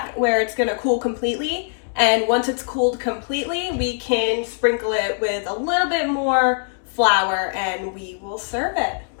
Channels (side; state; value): right; silent; digital silence